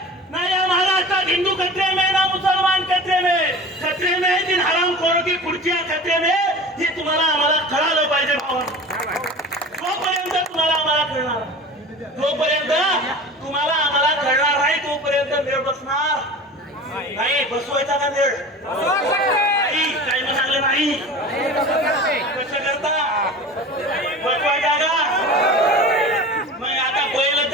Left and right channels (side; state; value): both; normal; correlation 0.36